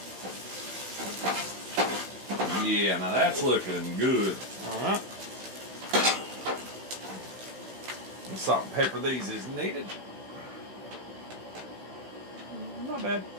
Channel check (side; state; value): left; late; 16 ms